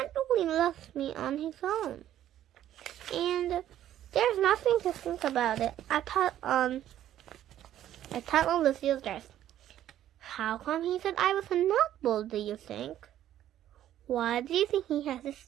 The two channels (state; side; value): quieter; left; 12.0 dB